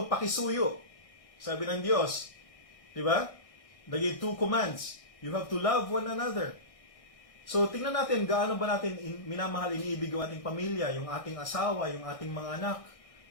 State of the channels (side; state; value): right; late; 1.6 ms